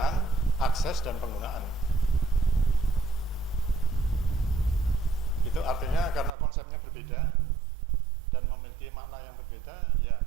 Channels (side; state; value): left; drops out; at 6.3 s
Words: akses, dan penggunaan. Itu artinya karena konsepnya berbeda dan memiliki makna yang berbeda, ya